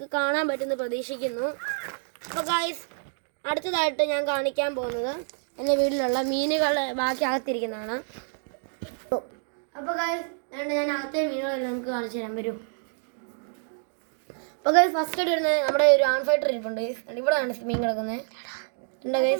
കാണാൻ പറ്റുമെന്ന് പ്രതീക്ഷിക്കുന്നു. അപ്പോൾ ഗൈസ് അടുത്തതായിട്ട് ഞാൻ കാണിക്കാൻ പോകുന്നത് എൻ്റെ വീട്ടിലുള്ള മീനുകളെ ബാക്കി അകത്തിരിക്കുന്നതാണ്. അപ്പോൾ ഗൈസ് ഞാൻ അകത്തെ മീനുകളെല്ലാം നിങ്ങൾക്ക് കാണിച്ചു തരാൻ വരും. അപ്പോൾ ഗൈസ് ഫസ്റ്റ് ആയിട്ട് വരുന്നത് നമ്മുടെ ഒരു ആൺ ഫൈറ്റർ ഇരിപ്പുണ്ട്. ഇവിടെയാണ് മീൻ കിടക്കുന്നത് ഉണ്ട്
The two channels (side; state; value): left; silent; 60 dB below the other